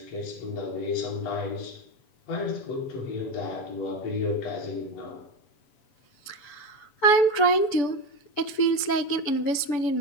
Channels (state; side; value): late; right; 7.0 ms